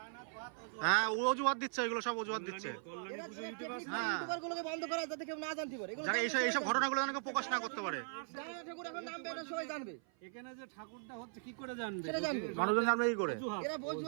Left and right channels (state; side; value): silent; left; 52 dB below the other